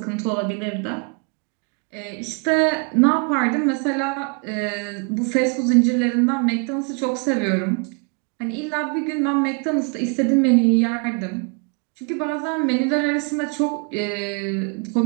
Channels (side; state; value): left; quieter; 36.5 dB